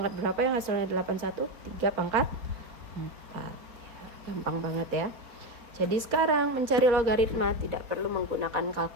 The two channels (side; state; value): left; late; 4.0 ms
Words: berapa yang hasilnya 81? 3 pangkat 4. Ya, gampang banget ya. Jadi sekarang mencari logaritma tidak perlu menggunakan